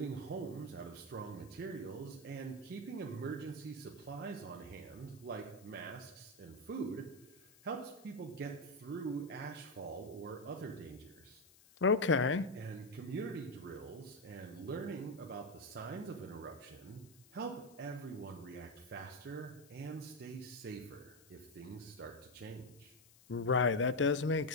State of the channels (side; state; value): left; noise; hiss, 24 dB below the sound